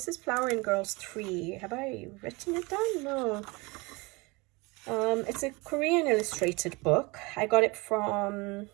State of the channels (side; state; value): left; quieter; 25.5 dB